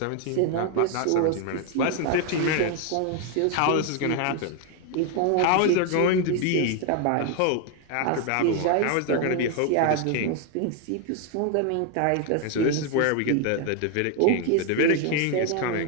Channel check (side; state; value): both; different; correlation 0.01